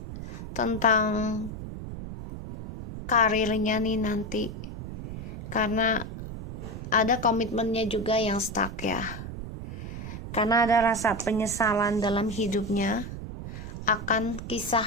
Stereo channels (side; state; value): right; noise; rumble, 9 dB below the sound